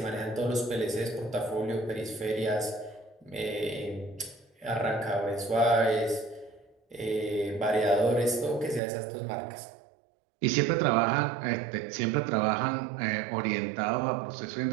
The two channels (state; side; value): drops out; left; at 8.8 s